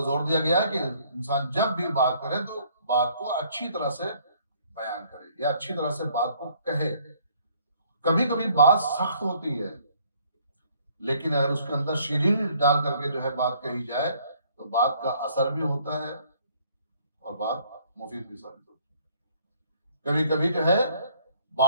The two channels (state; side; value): inverted; both; correlation -0.62